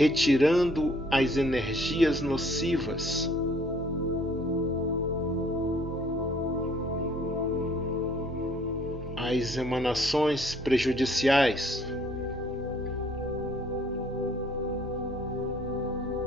as energias nocivas, as emanações prejudiciais,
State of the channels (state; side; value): normal; both; correlation 0.60